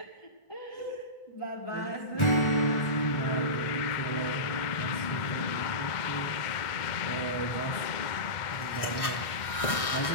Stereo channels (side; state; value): right; late; 1.4 ms